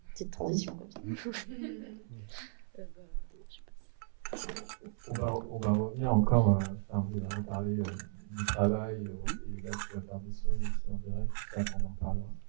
petite transition comme ça. On va revenir encore, vous avez parlé du travail, et là tu vas faire des sons aussi en direct, ça on en reparlera.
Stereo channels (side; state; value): left; silent; 54 dB below the other